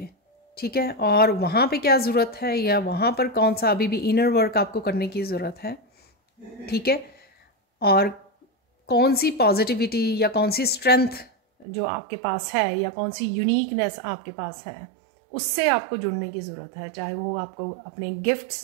ठीक है। और वहाँ पे क्या ज़रूरत है, या वहाँ पर कौन सा अभी भी इनर वर्क आपको करने की ज़रूरत है, ठीक है। और कौन सी पॉजिटिविटी या कौन सी स्ट्रेंथ जो आपके पास है, या कौन सी यूनिकनेस आपके पास है, उससे आपको जुड़ने की ज़रूरत है। चाहे वो आपको अपने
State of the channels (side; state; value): left; drops out; at 11.7 s